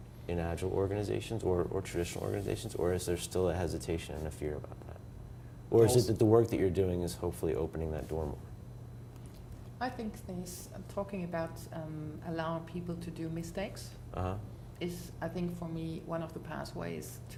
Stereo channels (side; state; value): both; identical; correlation 1.00